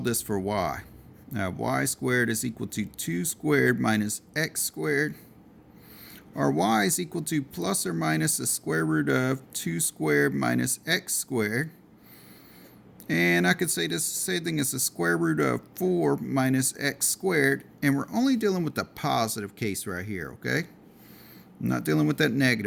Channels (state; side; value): identical; both; correlation 1.00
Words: this for y? Now, y squared is equal to 2 squared minus x squared. Or y is equal to plus or minus the square root of 2 squared minus x squared. And I could say this same thing as the square root of 4 minus x squared. And we're only dealing with the positive case right here, okay? I'm not dealing with that